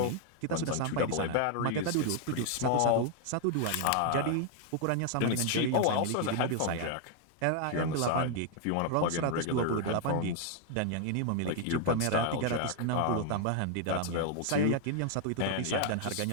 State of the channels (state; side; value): different; both; correlation 0.00